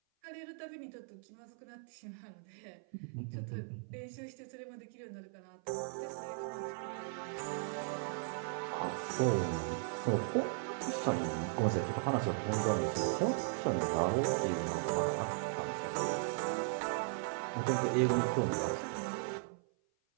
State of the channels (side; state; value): left; silent; 53 dB below the other